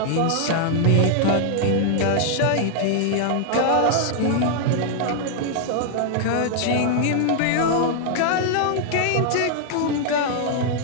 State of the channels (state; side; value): different; both; correlation -0.01